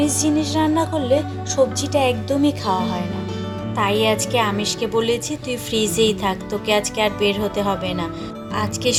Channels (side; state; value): both; identical; correlation 1.00